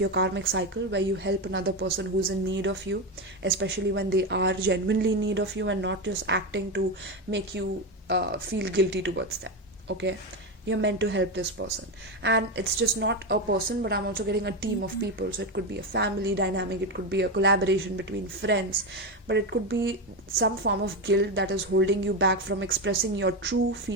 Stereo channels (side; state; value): both; normal; correlation 0.13